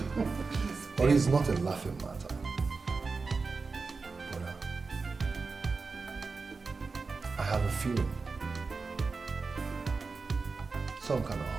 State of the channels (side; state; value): left; quieter; 4.3 dB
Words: But it's not a laughing matter. Bona, I have a feeling, some kind of